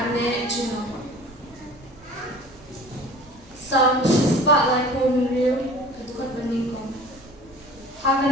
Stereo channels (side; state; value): both; normal; correlation 0.46